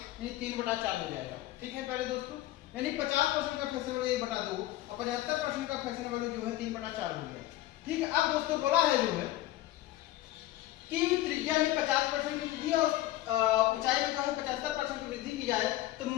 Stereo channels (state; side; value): quieter; right; 15.4 dB